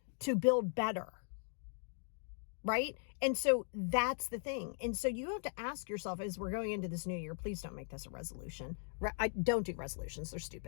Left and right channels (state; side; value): silent; right; 52 dB below the other